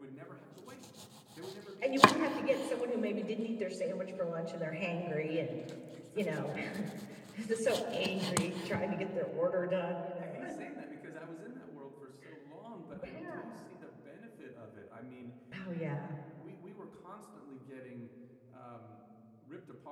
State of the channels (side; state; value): both; identical; correlation 1.00